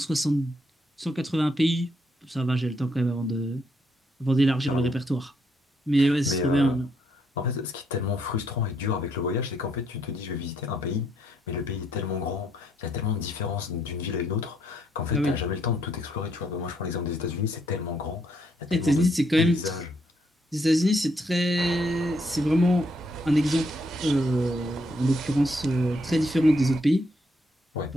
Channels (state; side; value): normal; both; correlation 0.74